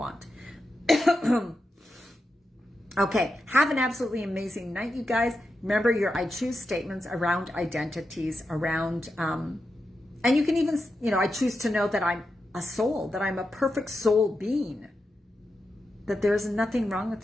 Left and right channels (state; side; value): normal; both; correlation 0.88